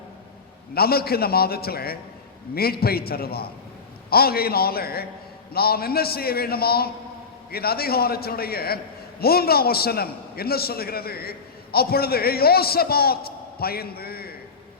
நமக்கு இந்த மாதத்தில் மீட்பை தருவார். ஆகையினால நாம் என்ன செய்ய வேண்டுமா? இந்த அதிகாரத்தினுடைய 3ஆம் வசனம் என்ன சொல்லுகிறது? அப்பொழுது யோசபாத் பயந்து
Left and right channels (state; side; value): quieter; right; 5.0 dB